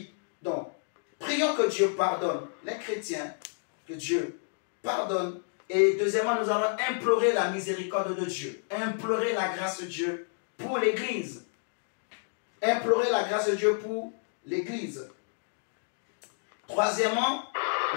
Donc, prions que Dieu pardonne les chrétiens, que Dieu pardonne. Et deuxièmement, nous allons implorer la miséricorde de Dieu, implorer la grâce de Dieu pour l'Église. Implorer la grâce de Dieu pour l'Église. Troisièmement,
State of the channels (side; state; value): right; silent; digital silence